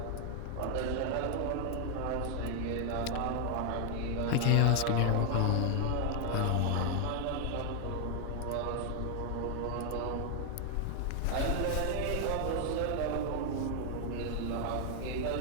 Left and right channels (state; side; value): different; both; correlation 0.00